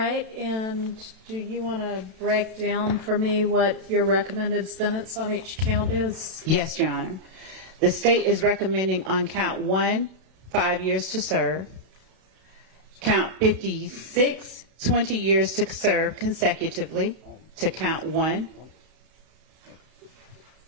and do you want to break down for me what your recommended sentence on each count is? Yes, Your Honor. The state is recommending on count 1, 5 years to serve. Count 56, 20 years to serve consecutively to count 1.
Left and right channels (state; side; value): late; left; 32 ms